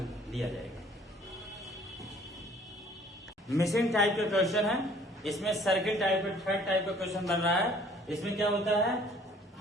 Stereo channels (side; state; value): both; normal; correlation 0.56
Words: दिया जाएगा। मिसिंग टाइप का क्वेश्चन है, इसमें सर्किल टाइप का थर्ड टाइप का क्वेश्चन बन रहा है। इसमें क्या होता है,